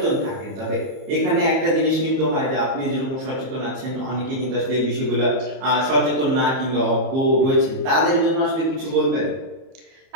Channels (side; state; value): left; late; 31 ms